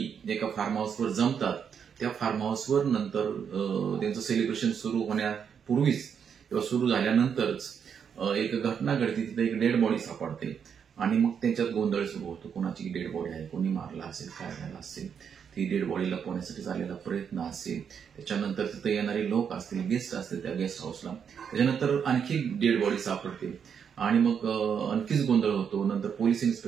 एका फार्म हाऊसवर जमतात। त्या फार्म हाऊसवर नंतर त्यांचं सेलिब्रेशन सुरू होण्यापूर्वीच किंवा सुरू झाल्यानंतरच एक घटना घडते, तिथे एक डेड बॉडी सापडते आणि मग त्यांच्यात गोंधळ सुरू होतो, कोणाची डेड बॉडी आहे, कोणी मारला असेल, काय झालं असेल, ती डेड बॉडी लपवण्यासाठी झालेला प्रयत्न असेल, त्याच्यानंतर तिथे येणारे लोक असतील, गेस्ट असतील त्या गेस्ट हाऊसला, त्याच्यानंतर आणखी डेड बॉडी सापडते आणि मग आणखीच गोंधळ होतो। नंतर पोलीस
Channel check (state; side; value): quieter; left; 7.3 dB